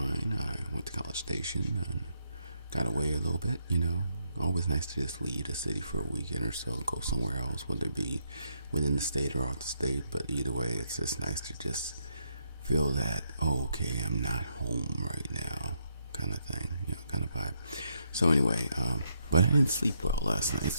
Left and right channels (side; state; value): both; inverted; correlation -0.77